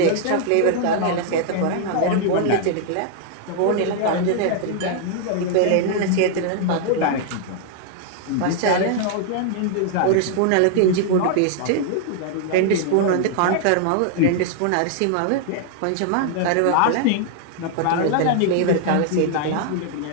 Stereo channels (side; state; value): both; different; correlation 0.00